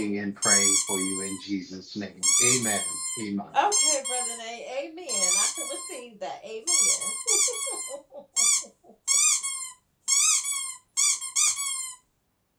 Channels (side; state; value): both; identical; correlation 1.00